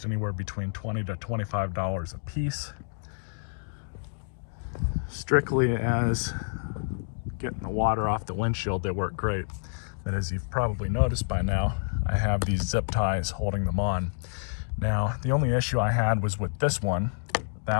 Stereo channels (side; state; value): right; silent; digital silence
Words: anywhere between $20 to $25 a piece. Strictly as getting the water off the windshield, they work great. But as you've probably noticed by now, I have these zip ties holding them on. Now, the only issue I had was with this one.